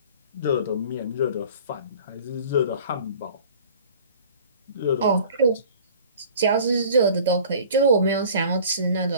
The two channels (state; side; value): inverted; both; correlation -0.46